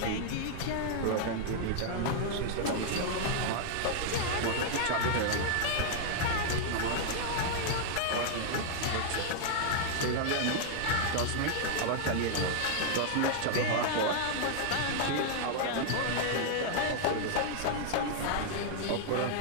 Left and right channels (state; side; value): different; both; correlation 0.00